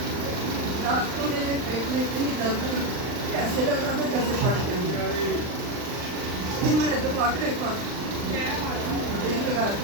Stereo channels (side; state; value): left; late; 39 ms